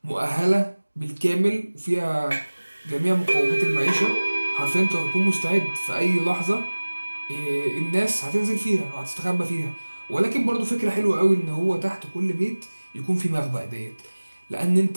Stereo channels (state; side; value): inverted; both; correlation -1.00